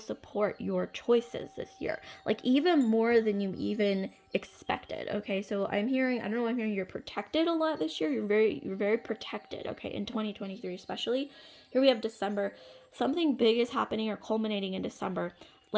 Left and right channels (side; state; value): both; identical; correlation 1.00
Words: your choices this year, like even more than you even expected. Okay, so I'm hearing, I don't know, I'm hearing you're protected a lot this year. You're very protected, okay, in 2023 especially. Here we have December. Something big is happening or culminating in December,